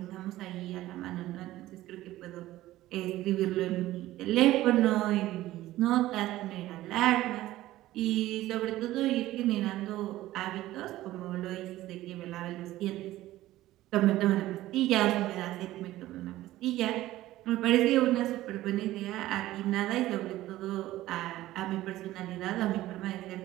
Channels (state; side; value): quieter; left; 15.7 dB